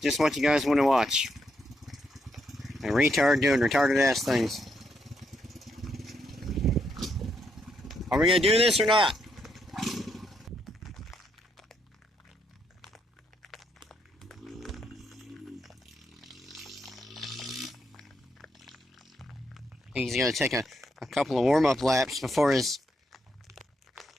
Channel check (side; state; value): both; normal; correlation 0.78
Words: Just what you guys want to watch. A retard doing retarded ass things. Are we going to do this or not? He's going to take a couple of warm-up laps before his